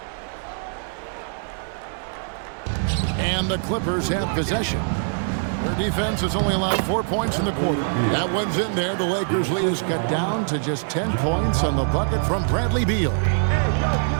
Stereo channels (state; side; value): silent; left; 63 dB below the other